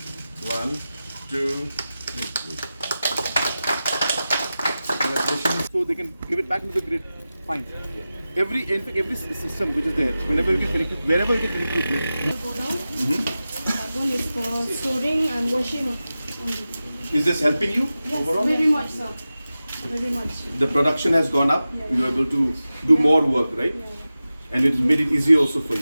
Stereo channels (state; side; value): inverted; both; correlation -0.94